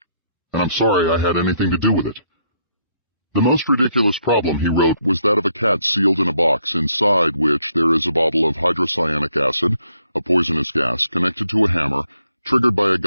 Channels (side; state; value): both; inverted; correlation -0.74